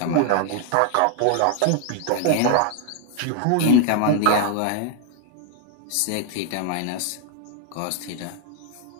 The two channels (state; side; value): different; both; correlation 0.00